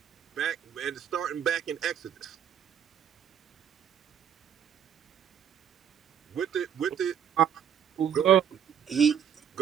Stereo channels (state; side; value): quieter; left; 8.7 dB